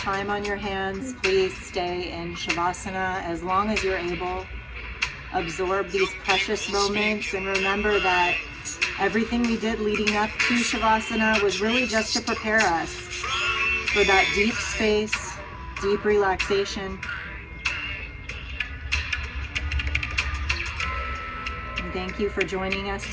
on your hands, please stay in Shavasana as long as you're able. Absorb these precious moments and remember that everything we did leading up to Shavasana was really just to prepare us for that deep space, deep relaxation. And thank you for joining us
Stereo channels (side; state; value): both; identical; correlation 1.00